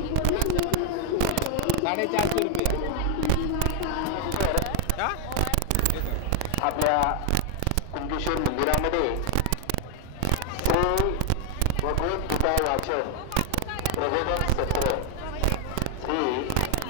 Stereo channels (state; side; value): different; both; correlation 0.01